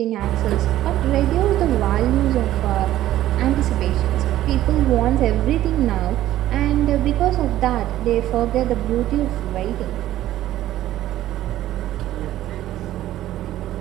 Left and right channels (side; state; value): left; quieter; 13.7 dB